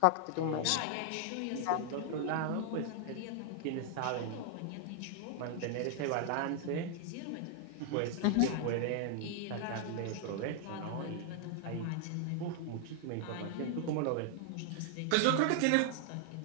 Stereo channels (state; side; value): different; both; correlation 0.00